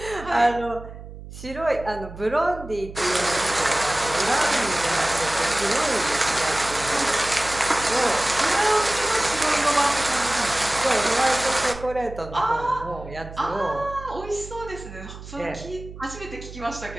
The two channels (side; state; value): right; noise; hum, 14 dB below the sound